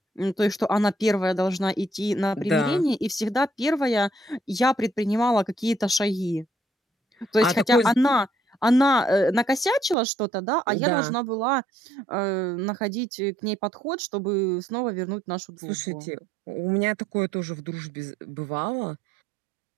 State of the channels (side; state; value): left; drops out; at 10.0 s